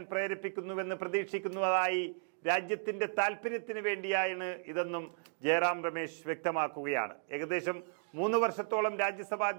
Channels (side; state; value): left; silent; digital silence